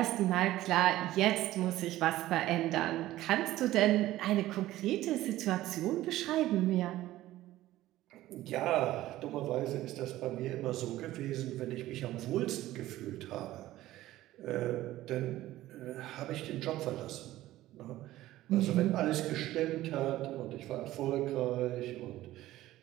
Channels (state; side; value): quieter; left; 15.5 dB